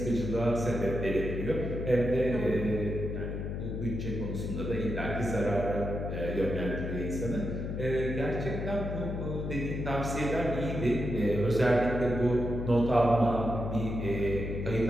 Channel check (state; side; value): noise; left; hum, 4 dB below the sound